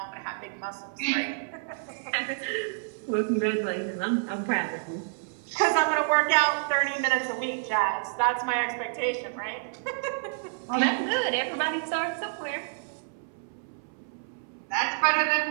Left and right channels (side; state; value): left; silent; 59 dB below the other